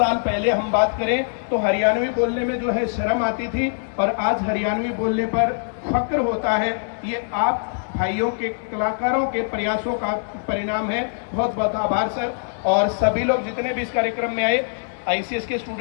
पहले हम बात करें तो हरियाणवी बोलने में जो है शर्म आती थी, और आज हरियाणवी बोलने पर फक्र होता है। ये आप भाइयों के, कलाकारों के प्रयासों का परिणाम है। बहुत बहुत आभार सर। और सभी लोग जितने भी इस कार्यक्रम में आए, आईसीएस के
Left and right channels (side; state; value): right; silent; digital silence